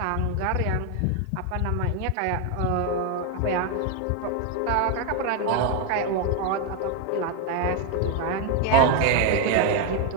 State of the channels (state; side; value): different; both; correlation 0.01